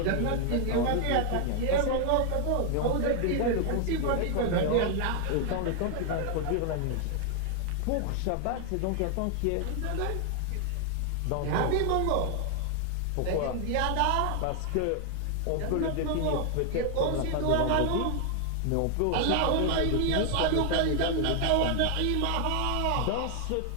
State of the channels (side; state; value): both; different; correlation 0.00